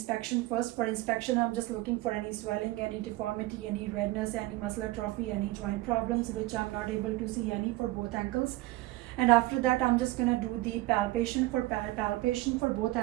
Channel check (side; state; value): left; quieter; 18.8 dB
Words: first. For inspection, I'm just looking for any swelling, any deformity, any redness, any muscle atrophy, any joint problems, which I'm not able to see any for both ankles. And after that, I'm just gonna do the palpation. For palpation for both